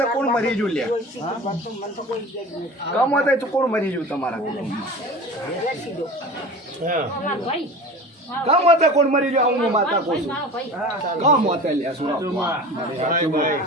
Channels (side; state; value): both; normal; correlation 0.36